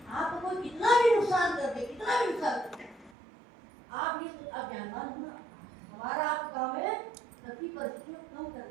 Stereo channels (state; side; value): drops out; left; at 3.2 s